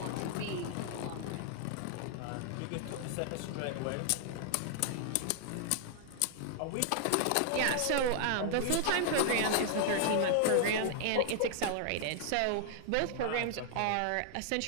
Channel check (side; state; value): both; different; correlation 0.00